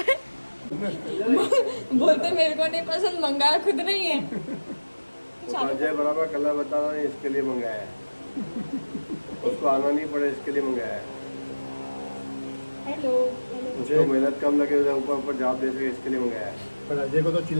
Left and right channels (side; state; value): both; inverted; correlation -1.00